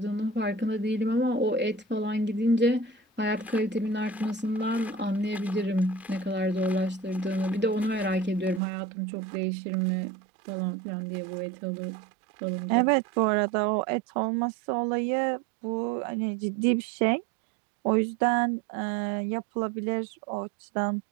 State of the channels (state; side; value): drops out; left; at 8.6 s